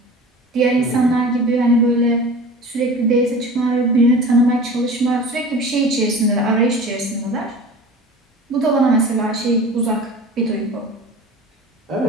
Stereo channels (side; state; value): both; normal; correlation 0.38